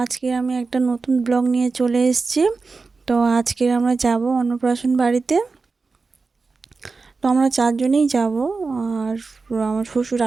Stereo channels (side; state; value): left; quieter; 4.2 dB